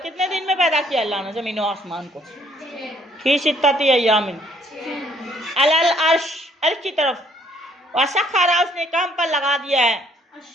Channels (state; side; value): normal; both; correlation 0.64